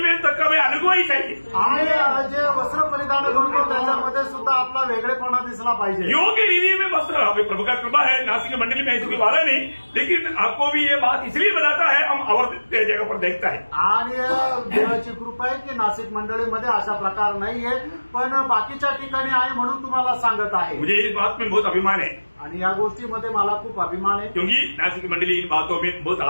में तक हमें अनुभव ही चाहिए. आणि जे वस्त्र परिधान करतो त्याच्यामध्ये सुद्धा आपला वेगळेपणा दिसला पाहिजे. योग्य रीति में वस्त्र, हमें प्रभु का कृपा है, नासिक मंडली में ऐसी कोई वादा नहीं, लेकिन आपको भी ये बात इसलिए बताता है, हम और जगह पर देखता है. आणि देवाची कृपा आहे की नाशिक मंडळीमध्ये अशा प्रकार नाहीये, पण बाकीच्या ठिकाणी आहे म्हणून तुम्हाला सांगत आहे. मुझे इस बात में बहुत अभिमान है आणि या गोष्टीमध्ये मला खूप अभिमान आहे, क्योंकि नासिक मंडली इन बातों में बहुत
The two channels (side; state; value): both; inverted; correlation -1.00